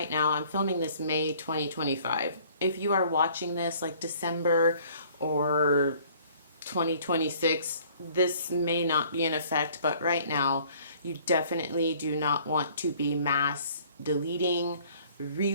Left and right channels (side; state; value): both; inverted; correlation -0.56